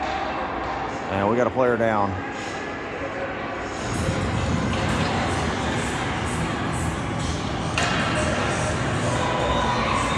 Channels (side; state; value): both; identical; correlation 1.00